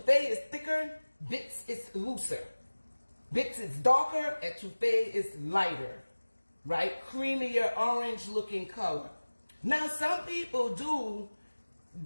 is thicker, bits is looser. Bits is darker, etouffee is lighter, right? Creamier, orange looking color. Now some people do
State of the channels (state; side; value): inverted; both; correlation -1.00